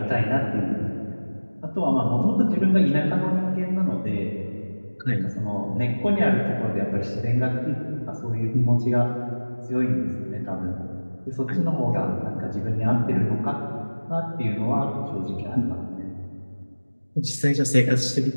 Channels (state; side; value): inverted; both; correlation -1.00